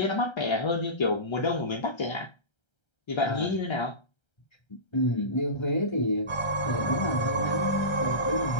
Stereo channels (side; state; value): right; late; 1.3 ms